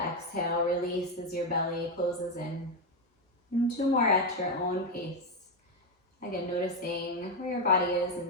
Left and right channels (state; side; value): normal; both; correlation 0.07